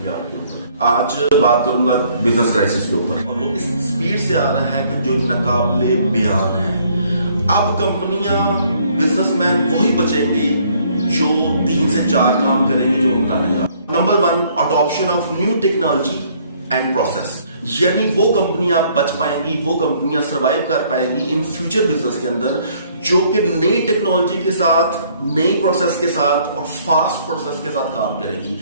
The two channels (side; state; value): both; inverted; correlation -0.63